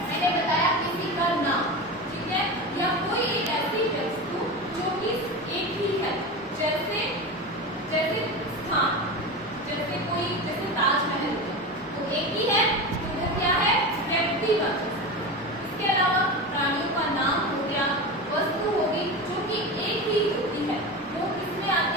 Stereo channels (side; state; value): both; normal; correlation 0.24